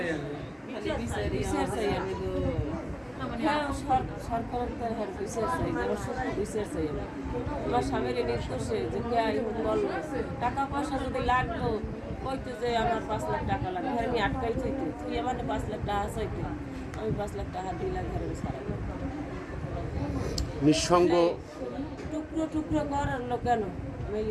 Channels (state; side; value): identical; both; correlation 1.00